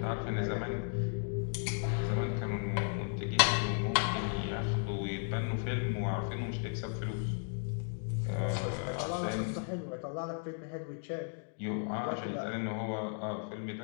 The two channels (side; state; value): right; silent; 54 dB below the other